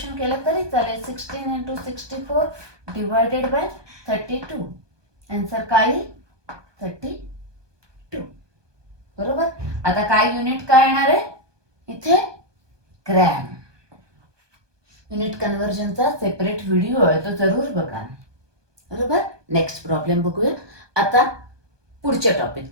केलं तरी चालेल. 16 इंटू 64 डिवायडेड बाय 32. आन्सर काय, 32. बरोबर. आता काय युनिट काय येणार आहे इथे, ग्रॅम. युनिट कन्व्हर्जनचा सेपरेट व्हिडिओ आहे, तो जरूर बघा. बरोबर. नेक्स्ट प्रॉब्लेम बघूया. आता पुढच्या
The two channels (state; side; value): late; left; 1.2 ms